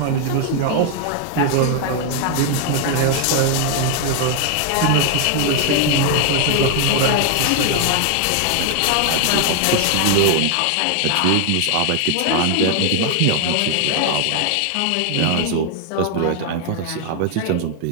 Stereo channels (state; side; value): different; both; correlation 0.00